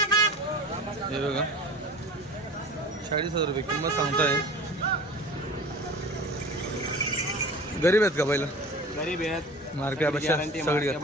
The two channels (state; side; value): normal; both; correlation 0.38